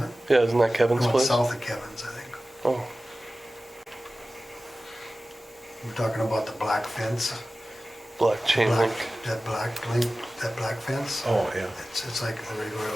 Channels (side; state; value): both; normal; correlation 0.96